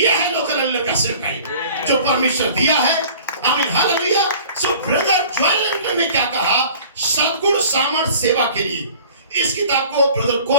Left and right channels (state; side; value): inverted; both; correlation -0.46